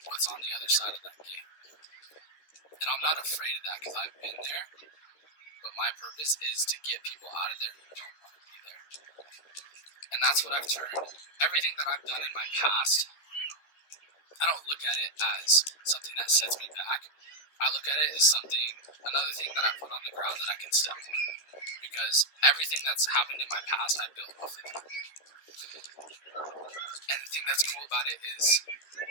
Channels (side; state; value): right; late; 13 ms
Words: what's on the other side of that gate. And I'm not afraid of that because I've been there. But my purpose is to get people out of there who don't want to be there. And that's what I've turned. Everything that I've done in my past, I don't look at it as something that sets me back. I look at it as another thing that I put on the ground that I can step on. Because everything that's happened in my past, I built off of it. And the thing that's cool about it is